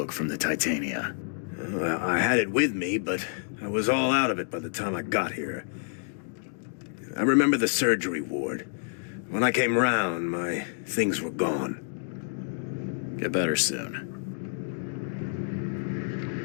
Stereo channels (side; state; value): right; silent; digital silence